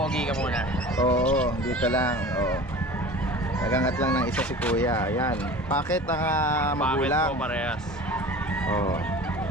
ka muna. Oo, dito lang. Oo. Nagangat lang ng isa si kuya. Ayan. Packet ang magulang. Parehas. Oo.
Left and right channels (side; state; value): both; normal; correlation 0.38